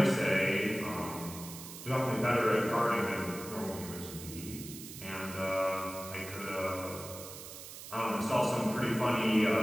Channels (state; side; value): noise; right; hiss, 12 dB below the sound